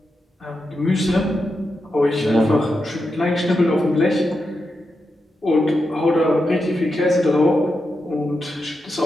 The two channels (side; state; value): both; normal; correlation 0.87